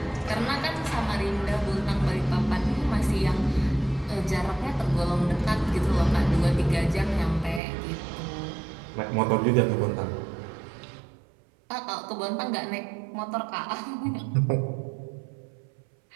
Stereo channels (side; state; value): left; drops out; at 7.6 s